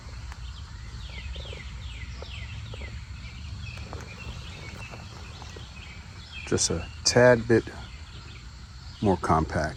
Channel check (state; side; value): identical; both; correlation 1.00